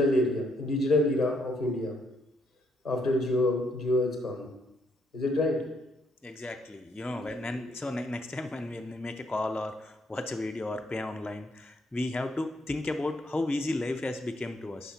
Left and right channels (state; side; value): normal; both; correlation 0.73